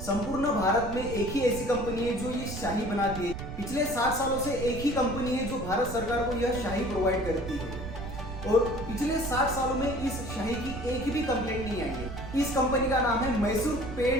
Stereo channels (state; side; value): noise; right; rumble, 9 dB below the sound